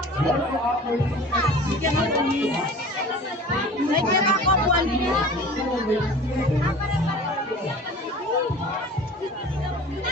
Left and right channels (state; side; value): normal; both; correlation 0.41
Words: May kira ako, buwan din.